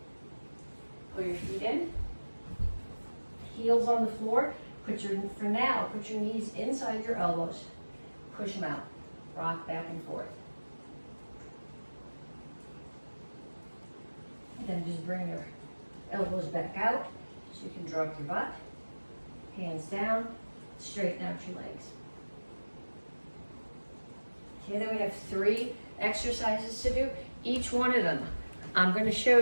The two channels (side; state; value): both; inverted; correlation -1.00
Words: Pull your feet in. Heels on the floor. For now, put your knees inside your elbows. Push them out. Rock back and forth. Then just bring your elbows back out so you can drop your butt. Hands down, straighten out your legs. Okay, then we have 3 exercises to do. Each one of them I'm going to show